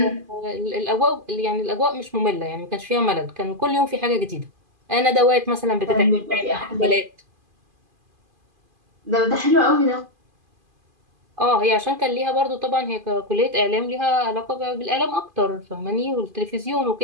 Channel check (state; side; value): late; left; 2.5 ms